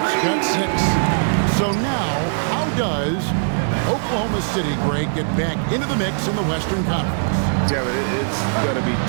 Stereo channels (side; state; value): left; silent; 65 dB below the other